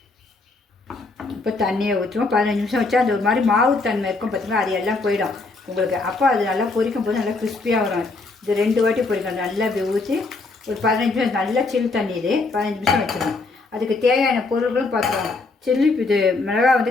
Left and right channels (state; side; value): quieter; right; 3.7 dB